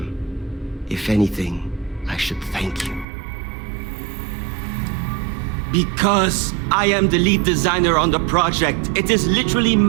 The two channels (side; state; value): left; drops out; at 3.1 s